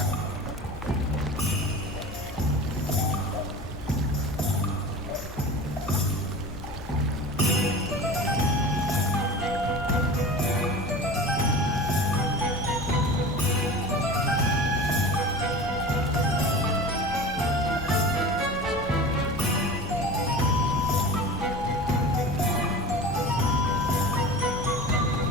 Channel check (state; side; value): noise; left; hum, 15 dB below the sound